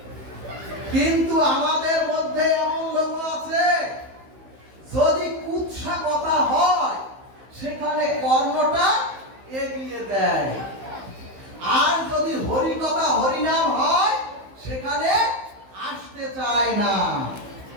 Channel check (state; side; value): late; left; 15 ms